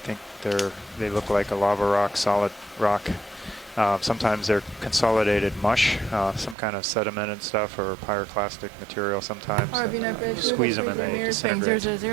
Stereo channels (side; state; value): left; drops out; at 6.6 s